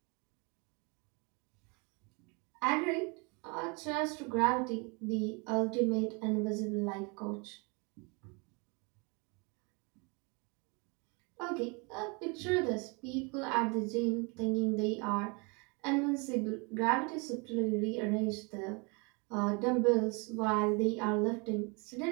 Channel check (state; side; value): quieter; left; 31.0 dB